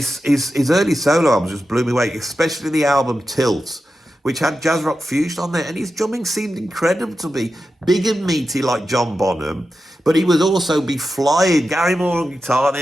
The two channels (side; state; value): both; normal; correlation 0.91